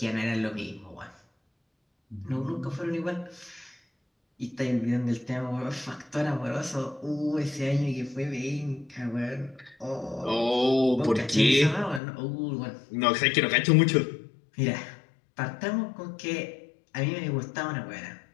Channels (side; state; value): right; drops out; at 12.0 s